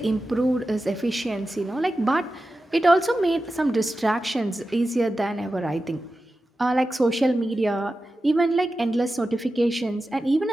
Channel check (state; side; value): normal; both; correlation 0.93